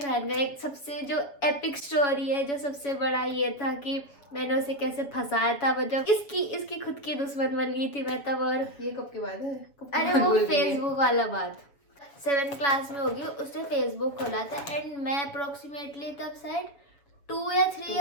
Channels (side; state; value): right; late; 7.1 ms